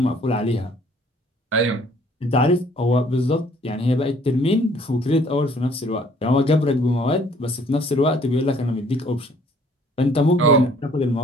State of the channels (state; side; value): normal; both; correlation 0.59